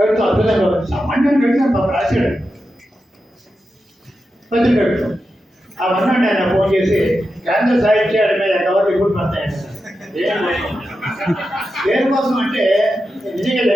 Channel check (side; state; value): both; normal; correlation 0.89